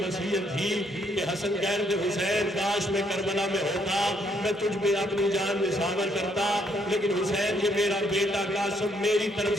وصیت تھی کہ حسن کہہ رہے تھے حسین کاش میں کربلا میں ہوتا، میں تجھ پہ اپنی جان نثار کرتا، لیکن حسین یہ میرا بیٹا قاسم میری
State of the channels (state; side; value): normal; both; correlation 0.71